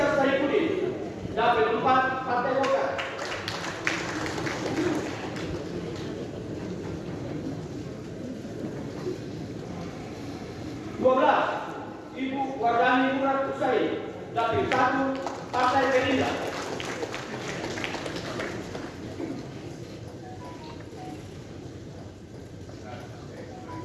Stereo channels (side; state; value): both; identical; correlation 1.00